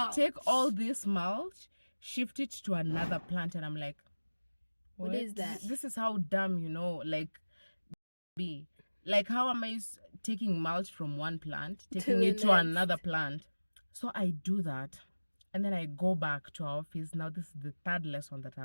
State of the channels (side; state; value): both; inverted; correlation -1.00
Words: take all this mulch, shift it to another plant, and I'm like, What is that? This is how dumb, like, be. Like, how am I taking mulch from one plant, taking the it to next. another plant? So I do that, and then I go back to our office. Now this is the third lesson that